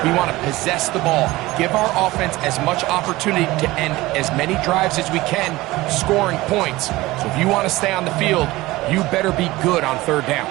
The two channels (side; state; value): left; quieter; 19.2 dB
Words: we want to possess the ball, give our offense as much opportunity to end as many drives as we can, scoring points. So if you want to stay on the field, you better be good on third down.